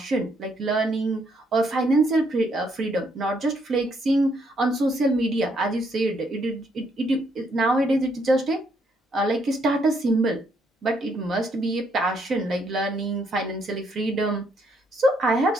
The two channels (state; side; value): normal; both; correlation 0.72